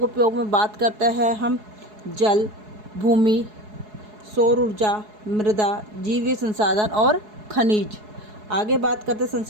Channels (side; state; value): left; late; 4.7 ms